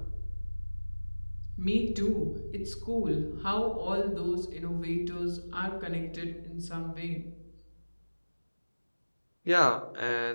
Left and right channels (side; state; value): both; inverted; correlation -1.00